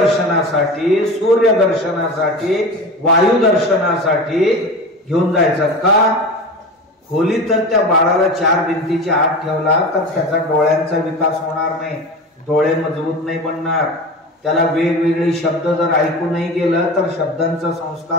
सूर्यदर्शनासाठी, वायुदर्शनासाठी घेऊन जायचं. का खोलीत तर त्या बाळाला 4 भिंतीच्या आत ठेवला तर त्याचा डोळ्यांचा विकास होणार नाही, डोळे मजबूत नाही बनणार. त्याला वेगवेगळे शब्द जर ऐकू नाही गेलं तर शब्दांचा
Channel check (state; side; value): normal; both; correlation 0.30